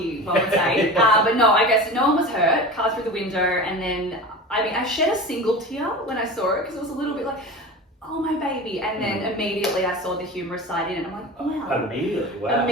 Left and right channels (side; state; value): both; normal; correlation 0.32